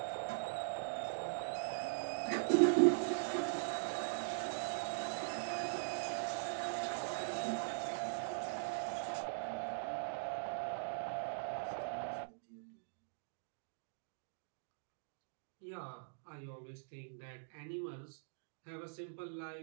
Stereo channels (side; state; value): left; silent; digital silence